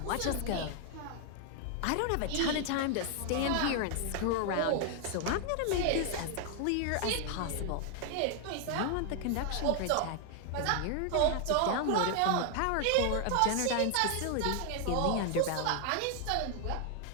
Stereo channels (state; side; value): different; both; correlation 0.00